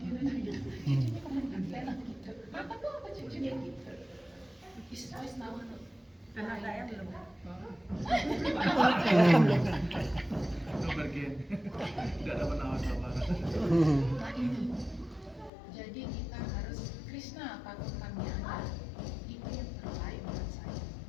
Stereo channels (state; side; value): drops out; right; at 15.5 s